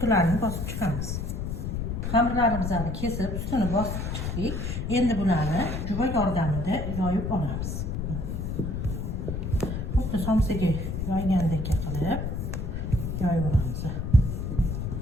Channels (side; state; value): left; noise; rumble, 3 dB below the sound